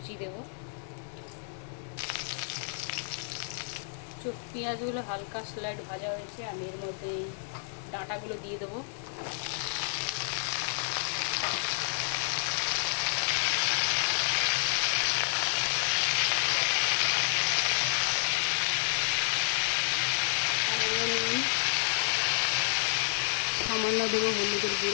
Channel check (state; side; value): silent; right; 56 dB below the other